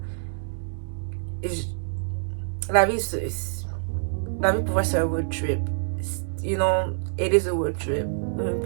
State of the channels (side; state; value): left; silent; digital silence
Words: vie, la vie pour moi, c'est un road trip. You know, it is a road trip.